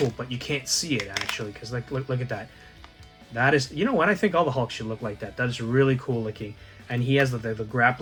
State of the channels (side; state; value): both; identical; correlation 1.00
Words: But you can't see it actually, because look at that. That is, you know what, I think all the Hulks should look like that. That is really cool looking. And he has the